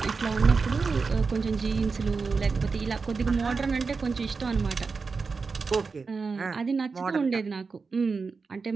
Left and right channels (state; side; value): quieter; left; 4.7 dB